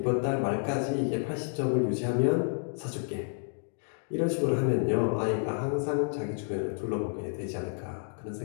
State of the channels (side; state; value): right; silent; digital silence